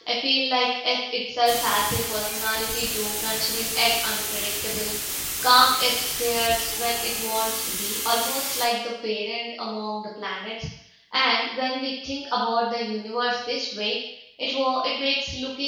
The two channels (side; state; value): both; identical; correlation 1.00